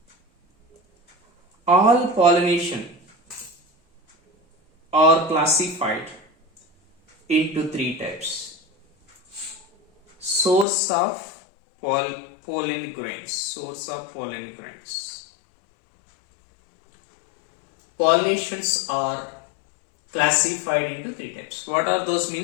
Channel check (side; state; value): right; drops out; at 10.7 s